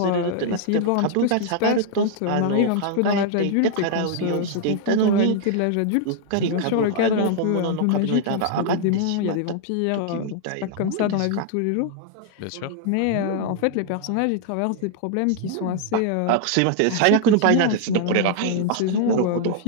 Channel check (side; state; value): both; different; correlation 0.00